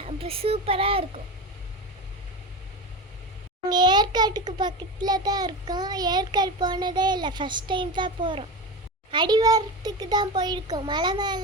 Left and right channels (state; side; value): normal; both; correlation 0.23